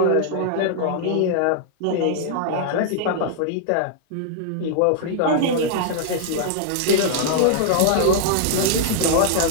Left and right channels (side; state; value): both; different; correlation -0.01